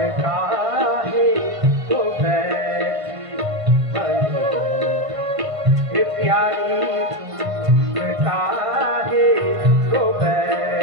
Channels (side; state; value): left; late; 1.5 ms